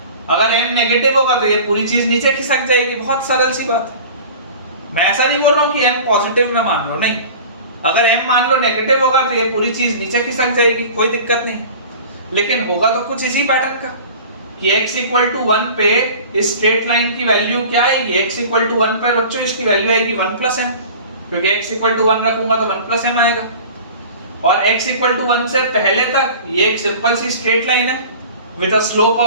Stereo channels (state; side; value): inverted; both; correlation -0.40